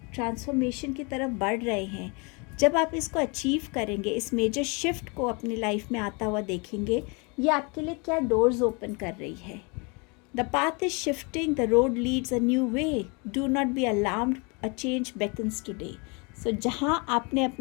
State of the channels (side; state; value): right; quieter; 30.9 dB